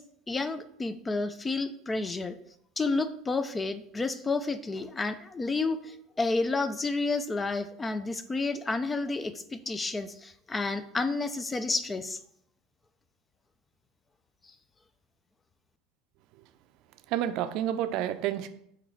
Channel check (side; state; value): both; normal; correlation 0.76